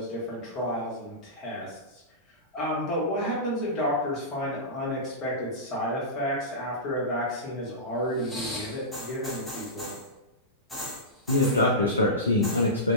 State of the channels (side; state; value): both; normal; correlation -0.17